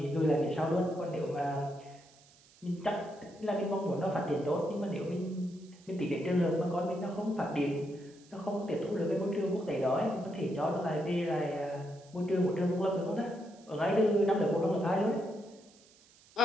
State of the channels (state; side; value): noise; right; hiss, 27 dB below the sound